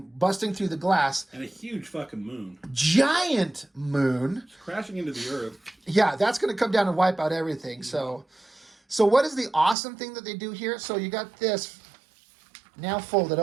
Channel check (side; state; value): left; drops out; at 9.8 s